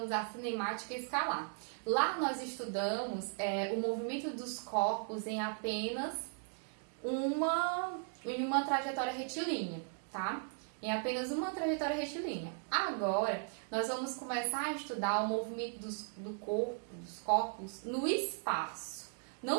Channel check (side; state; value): left; silent; 53 dB below the other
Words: a cinemática escalar. Lá nós estudamos o movimento dos corpos em apenas uma trajetória retilínea, tá? Em apenas uma trajetória retilínea. Agora, nós vamos começar a estudar o movimento dos corpos no espaço.